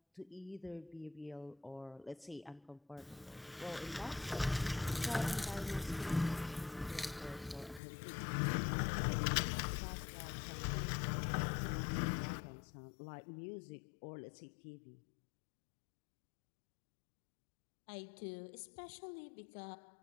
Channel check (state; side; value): drops out; right; at 7.8 s